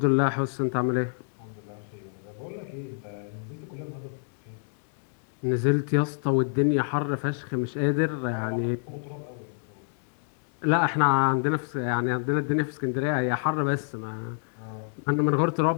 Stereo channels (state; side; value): silent; right; digital silence